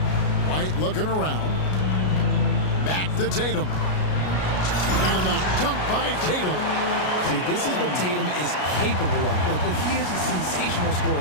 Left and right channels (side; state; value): right; late; 33 ms